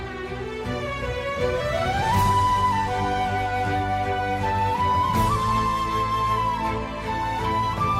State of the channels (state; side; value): identical; both; correlation 1.00